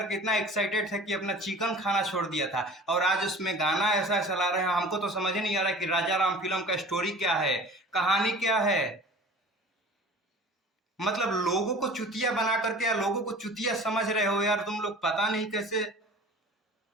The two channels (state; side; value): normal; both; correlation 0.42